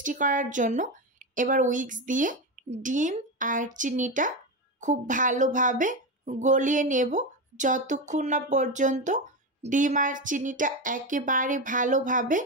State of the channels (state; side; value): normal; both; correlation 0.15